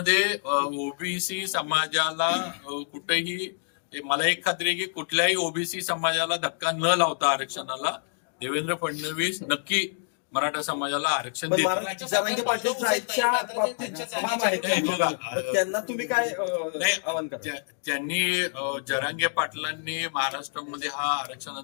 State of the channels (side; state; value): right; silent; digital silence